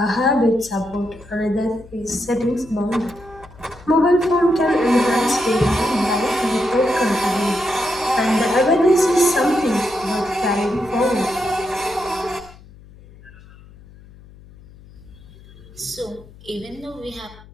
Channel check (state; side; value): noise; left; hum, 22 dB below the sound